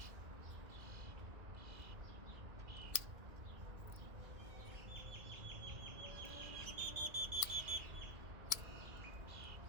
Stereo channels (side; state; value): left; late; 1.7 ms